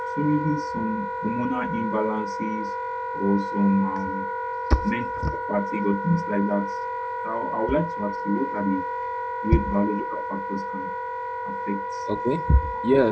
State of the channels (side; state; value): both; identical; correlation 1.00